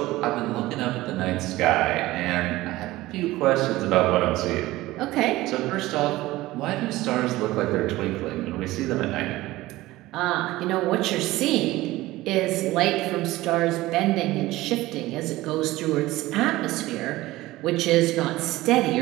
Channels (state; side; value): quieter; left; 17.9 dB